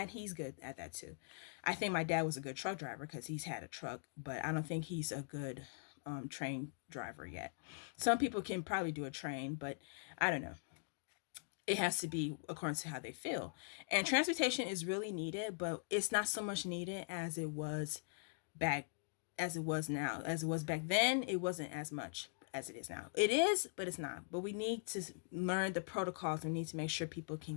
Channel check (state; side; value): silent; right; digital silence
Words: he's good at that too. I think my dad was a good truck driver because he's had a truck, but I don't think he's a good train driver yet. Some people can probably do a train, but I don't know. It has to be according to how they feel. And transportation is really needed, but it's not so much needed back as it was now. As it was back then, it wasn't as much as it is now. It is, but it's not. But we need to learn the protocols. We need to make sure people